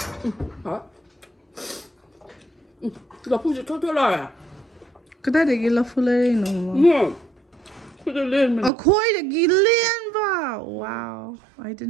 Hả? Lafu sẽ thoát lại à? Cái đấy để ghi Lafu lên nó mà. Put it in. Oh, koi để ghi lên ba. Wow, I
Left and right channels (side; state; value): left; drops out; at 8.7 s